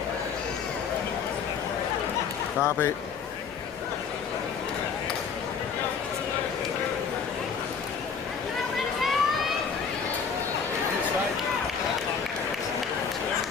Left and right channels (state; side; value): quieter; right; 6.2 dB